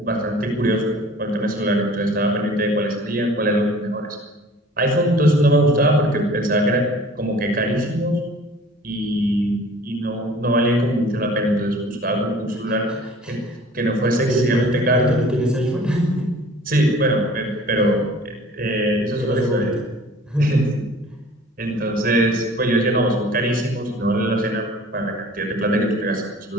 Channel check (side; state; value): both; normal; correlation 0.48